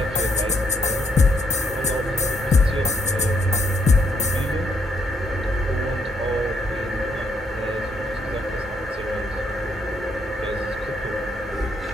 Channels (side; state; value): both; normal; correlation 0.74